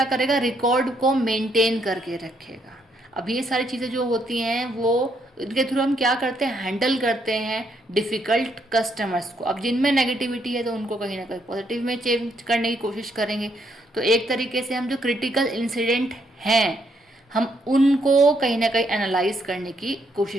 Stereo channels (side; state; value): both; normal; correlation 0.74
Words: करेगा, रिकॉर्ड को मेंटेन करके रखेगा। अब ये सारी चीज़ें जो होती हैं वो इनके थ्रू हम क्या करते हैं, हैंडल करते हैं डिफ़िकल्ट कस्टमर्स को। अब जिनमें नेगेटिविटी है तो उनको कहीं ना कहीं पॉजिटिव में चेंज करने की कोशिश करेंगे। तो एक तरीके से हम जो क्रिटिकल इंसिडेंट हैं हम उनको कहीं ना कहीं एनालाइज करने की